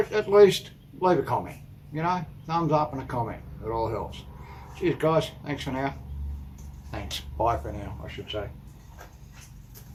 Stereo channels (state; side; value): identical; both; correlation 1.00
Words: at least leave a comment, you know, thumbs up and a comment, it all helps. Cheers guys, thanks for now. Thanks, bye for now I should say.